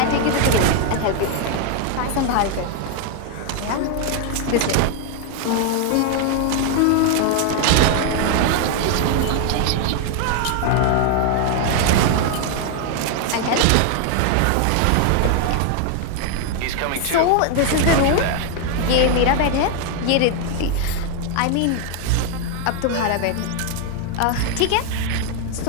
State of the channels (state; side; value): different; both; correlation 0.00